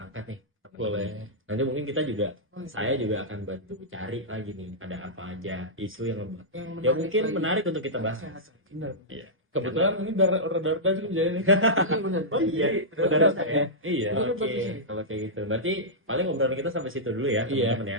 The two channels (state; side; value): normal; both; correlation -0.12